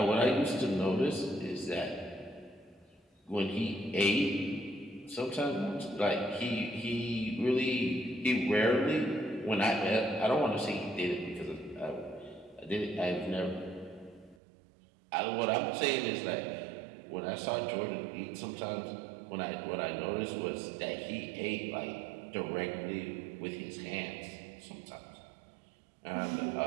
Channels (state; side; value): drops out; left; at 14.4 s